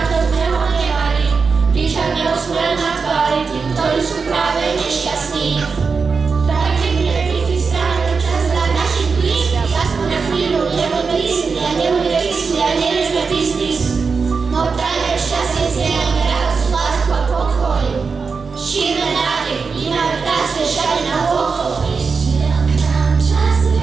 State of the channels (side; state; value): left; quieter; 5.0 dB